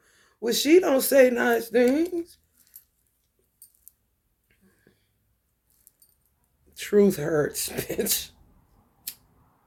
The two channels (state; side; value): identical; both; correlation 1.00